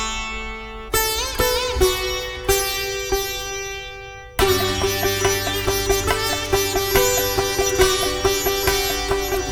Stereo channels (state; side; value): identical; both; correlation 1.00